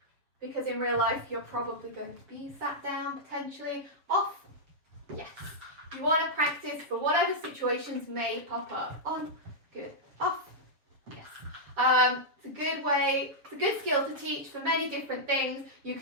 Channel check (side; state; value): left; late; 7.2 ms